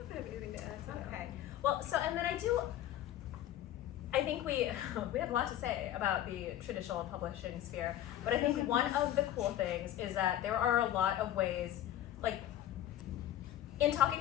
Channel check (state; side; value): quieter; right; 12.3 dB